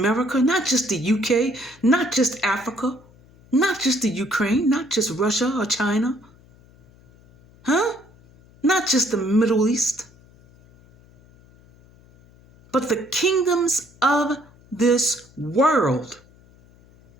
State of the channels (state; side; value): noise; left; hum, 28 dB below the sound